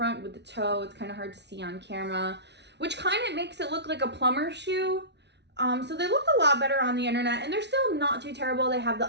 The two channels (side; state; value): left; late; 0.50 ms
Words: with the toe. It's kind of hard to see on camera, which kind of makes it look like a plumber shoe. So they look a lot better on the internet, and they're still not too terrible. They have the